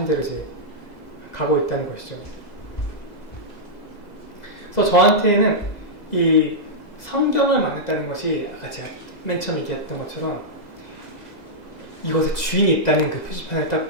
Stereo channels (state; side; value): late; right; 2.0 ms